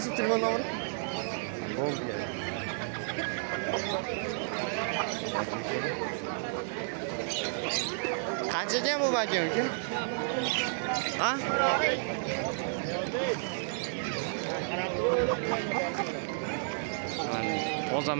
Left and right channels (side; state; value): left; silent; digital silence